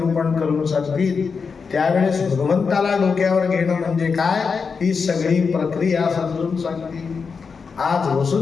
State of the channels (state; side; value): quieter; right; 5.3 dB